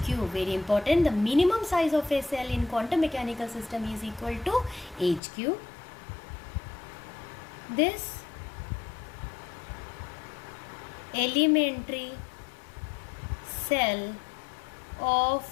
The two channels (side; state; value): right; drops out; at 5.2 s